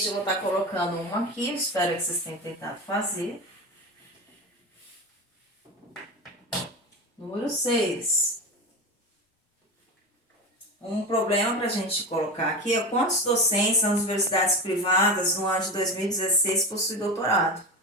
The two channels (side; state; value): both; normal; correlation 0.24